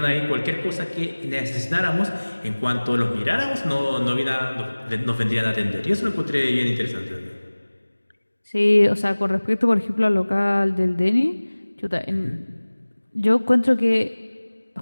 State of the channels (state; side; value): inverted; both; correlation -1.00